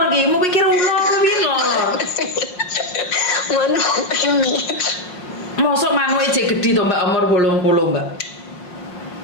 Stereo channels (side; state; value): right; late; 5.5 ms